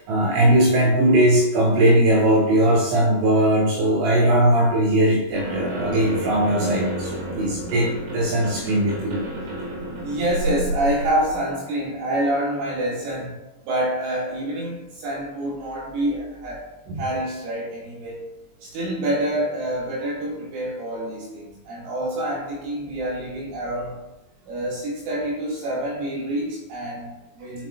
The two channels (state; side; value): late; left; 21 ms